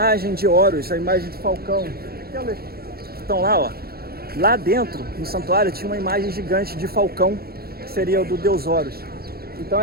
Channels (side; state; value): left; late; 0.45 ms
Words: de Horus, a imagem de falcão, aquelas que estão lá, ó. Lá dentro, no santuário, tinha uma imagem gigante de falcão, que seria o do deus Horus. Então